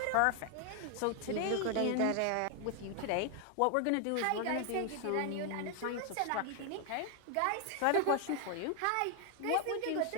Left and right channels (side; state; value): both; different; correlation 0.00